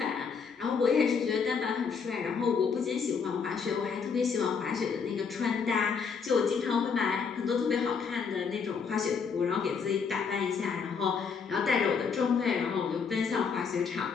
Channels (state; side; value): quieter; right; 5.9 dB